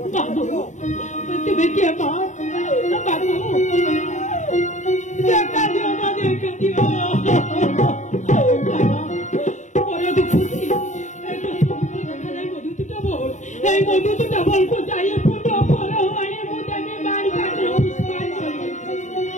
তুমি কে মা বাবু দেখা দিও মা দেখা দিও বড় দুঃখী দেখা যায় মধুপুরা বন এই মধুপুরা বন কোথায় ফুটো ফল হয় মুদানে বাড়ি কাটলো পুষ্পান করে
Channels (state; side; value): late; right; 0.35 ms